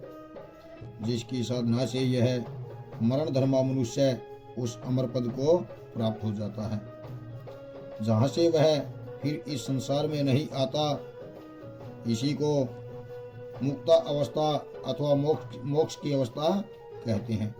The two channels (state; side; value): identical; both; correlation 1.00